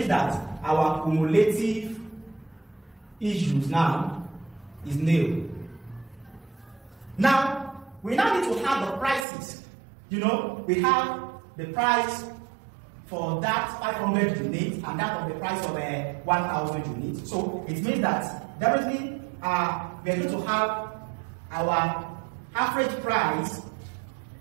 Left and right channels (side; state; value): left; drops out; at 9.2 s